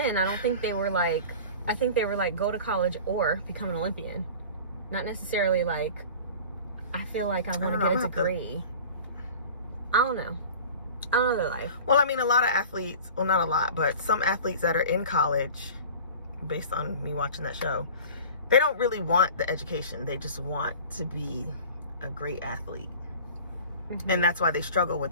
I don't think they were like, I think they were like, go to college or become an Olympian. Not necessarily like, I feel like I want to get a degree. I don't know their life. Well, I mean, a lot of athletes, well, not a lot, but some athletes that are in college, based on me watching that show, they don't really want the education. They just want to be a great athlete. And that's why they struggle with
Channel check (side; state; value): both; inverted; correlation -0.40